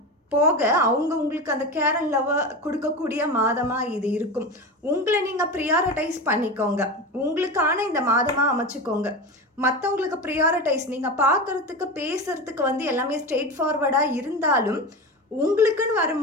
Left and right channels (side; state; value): both; normal; correlation 0.24